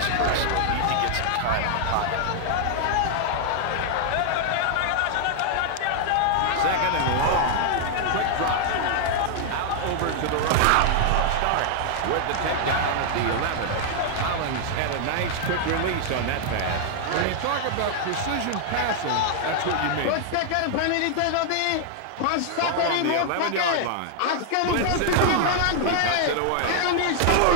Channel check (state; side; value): different; both; correlation -0.01